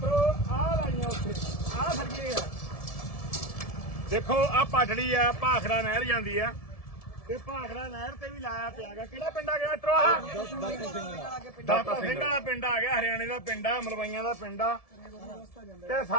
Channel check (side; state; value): right; late; 1.7 ms